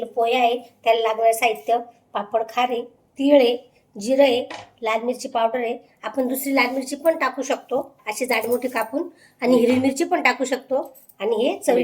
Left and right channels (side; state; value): both; identical; correlation 1.00